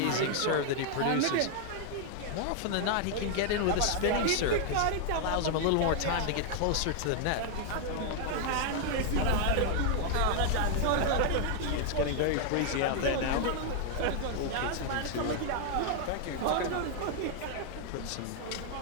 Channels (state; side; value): different; both; correlation 0.00